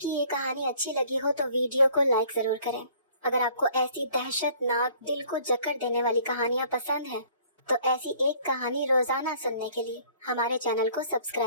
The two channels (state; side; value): inverted; both; correlation -0.56